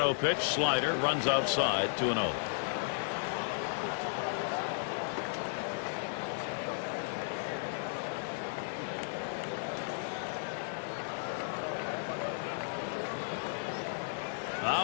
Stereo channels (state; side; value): silent; right; 55 dB below the other